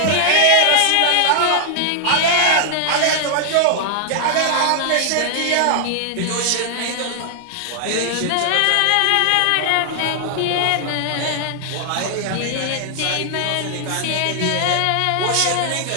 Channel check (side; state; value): both; different; correlation 0.00